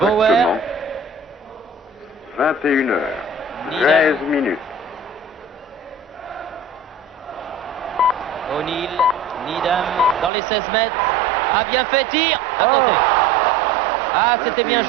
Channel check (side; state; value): left; drops out; at 10.3 s